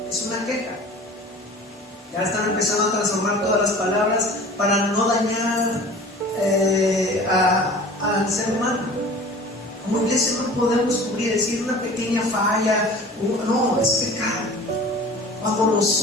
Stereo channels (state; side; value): normal; both; correlation 0.42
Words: es una queja. Ya están empezando a transformar todas las palabras para no dañar al ser humano. Como iglesia no podemos cubrir, decir una pequeña falla, no, es pecado. Cuando